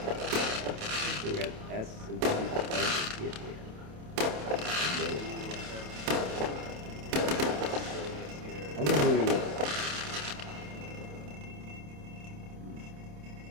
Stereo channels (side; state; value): left; late; 27 ms